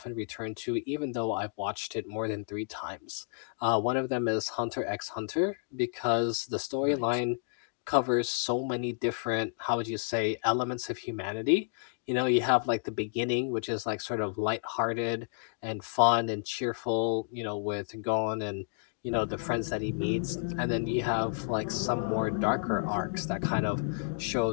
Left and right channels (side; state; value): right; silent; digital silence